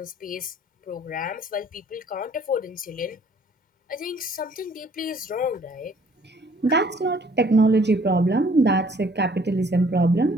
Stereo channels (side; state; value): both; normal; correlation 0.59